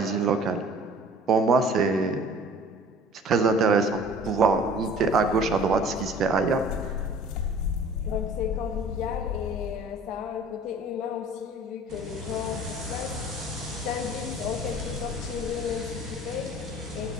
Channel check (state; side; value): normal; both; correlation 0.47